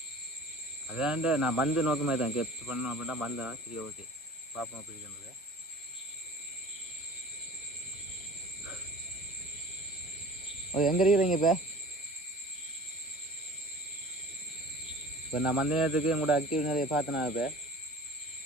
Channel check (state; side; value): normal; both; correlation 0.43